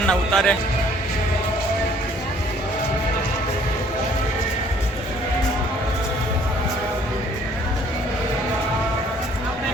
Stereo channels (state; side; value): normal; both; correlation 0.59